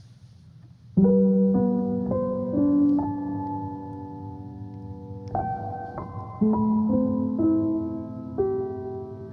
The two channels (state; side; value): identical; both; correlation 1.00